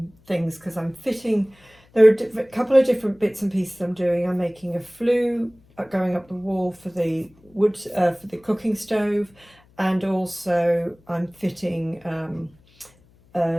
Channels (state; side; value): noise; left; hum, 30 dB below the sound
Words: things because I'm fitting, there are a couple of different bits and pieces I'm doing. I'm making a flue going up the wall for the wood, for the cooking stove, and also I'm fitting, I'm